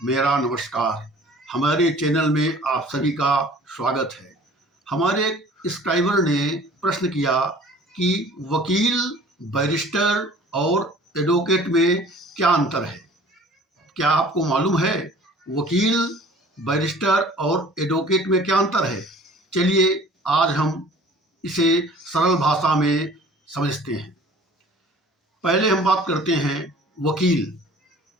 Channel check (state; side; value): normal; both; correlation 0.48